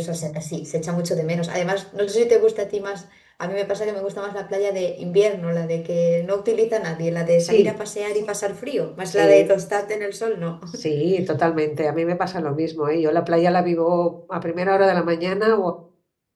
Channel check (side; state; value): both; identical; correlation 1.00